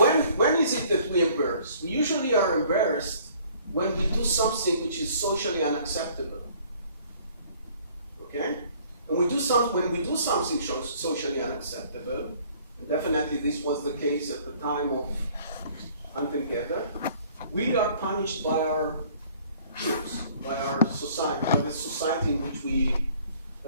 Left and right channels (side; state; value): both; inverted; correlation -0.56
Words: when is it that we embarrass? We usually are embarrassed when we do something which is socially unacceptable. Okay? And when we do something socially unacceptable, and definitely this was the case at the time of Hunter-Gatherer, we are punished by our peers, by our society, by the society in which we